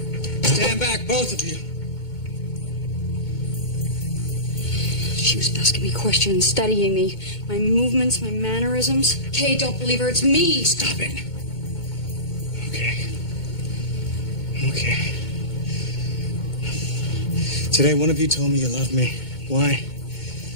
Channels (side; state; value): right; late; 2.2 ms